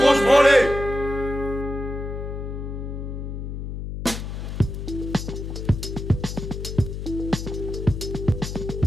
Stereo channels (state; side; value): noise; left; hum, 6 dB below the sound